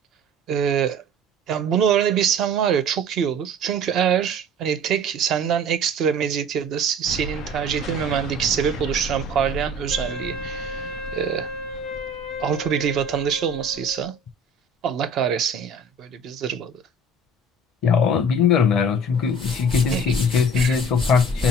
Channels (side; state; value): both; normal; correlation 0.45